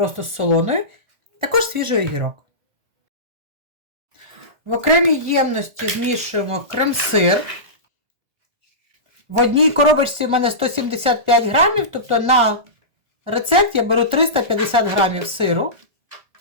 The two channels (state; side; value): late; left; 1.4 ms